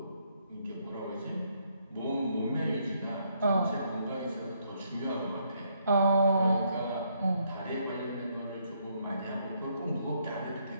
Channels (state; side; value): inverted; both; correlation -0.72